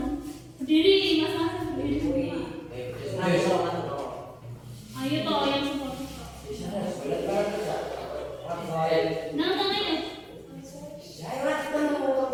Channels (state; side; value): identical; both; correlation 1.00